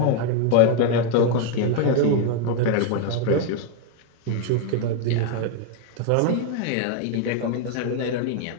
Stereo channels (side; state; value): both; different; correlation 0.01